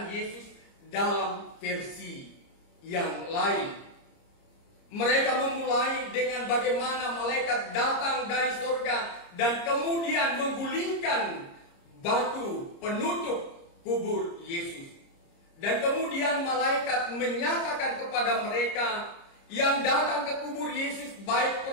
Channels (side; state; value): right; late; 30 ms